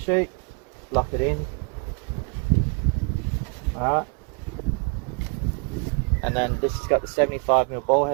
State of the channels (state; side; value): quieter; left; 37.2 dB